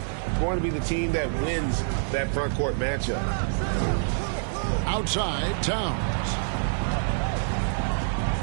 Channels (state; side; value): silent; left; digital silence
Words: going to be the team that wins that front court matchup. Outside, Towns.